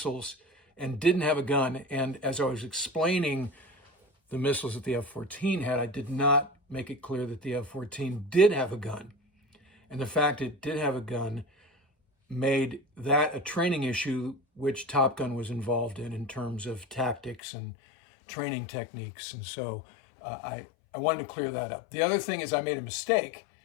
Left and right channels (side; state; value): right; drops out; at 17.4 s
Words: and didn't have a gun. And as I was explaining the missiles that the F-14 had, I did not make it clear that the F-14 did have a gun. And the fact it did have a gun made that a training issue, which Top Gun was involved in terms of tactics and training techniques. And so I wanted to clear that up. The other thing is I made a mistake